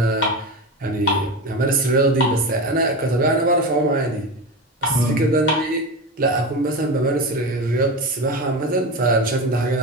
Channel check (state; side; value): normal; both; correlation 0.22